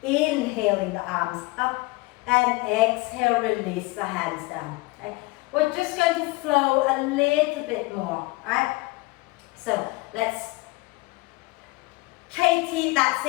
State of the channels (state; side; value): quieter; right; 23.1 dB